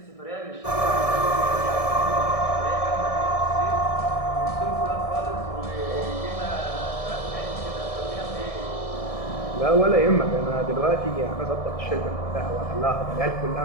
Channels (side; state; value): right; late; 1.6 ms